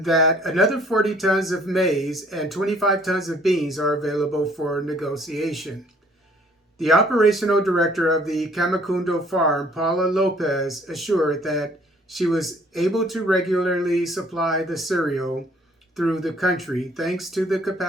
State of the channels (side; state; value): both; normal; correlation 0.59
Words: that another 40 tons of maize and 25 tons of beans are available for negotiation. The operational director of the Kamikundo farm, Paula Lopez, assured that she was able to regularly supply the cereal through the country thanks to the